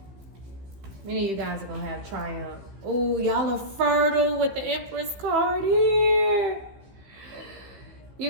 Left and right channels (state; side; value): late; left; 15 ms